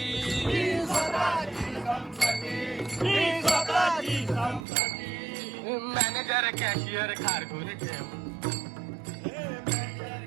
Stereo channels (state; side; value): drops out; left; at 4.7 s